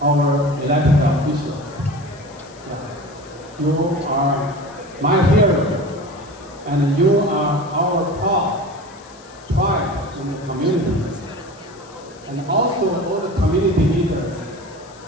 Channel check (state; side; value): noise; left; hiss, 24 dB below the sound